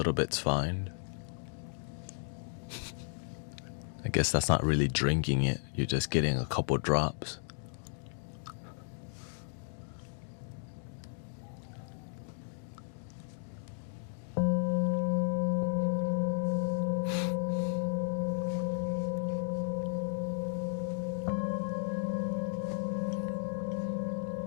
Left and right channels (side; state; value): right; silent; digital silence